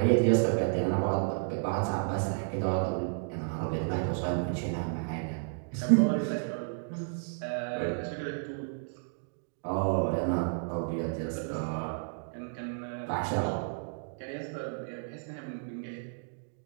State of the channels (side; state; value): left; silent; digital silence